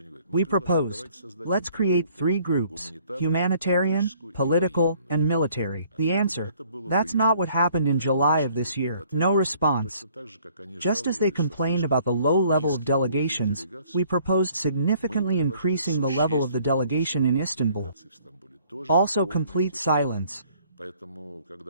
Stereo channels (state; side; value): inverted; both; correlation -0.60